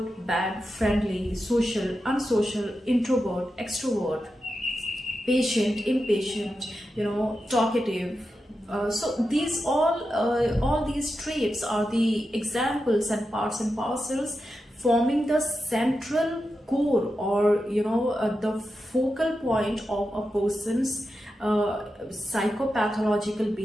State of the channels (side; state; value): both; normal; correlation 0.89